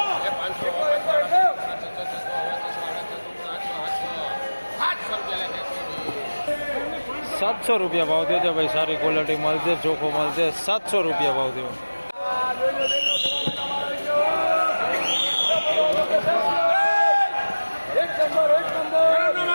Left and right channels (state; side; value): inverted; both; correlation -1.00